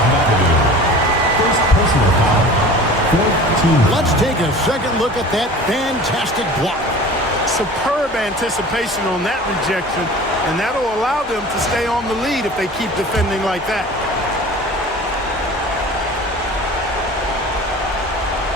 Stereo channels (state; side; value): normal; both; correlation 0.40